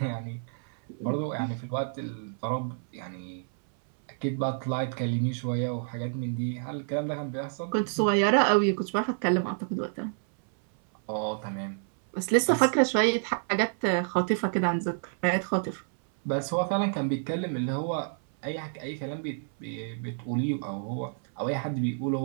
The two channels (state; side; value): silent; left; 59 dB below the other